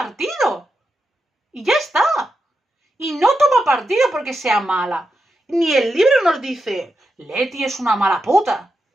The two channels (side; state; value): both; normal; correlation 0.87